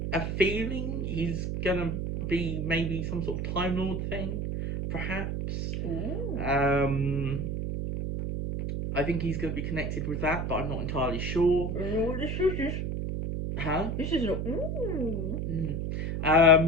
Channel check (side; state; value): right; noise; hum, 2 dB below the sound